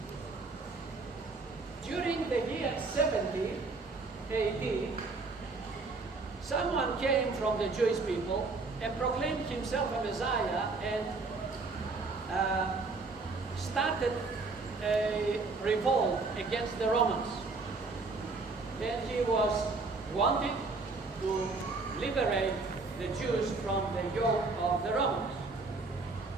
During the year 70 AD, someone came from the Jewish people and proclaimed himself a Messiah and started a revolt against the Romans. And he was wanting to liberate the Jews from the yoke of the Romans.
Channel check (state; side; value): quieter; left; 3.8 dB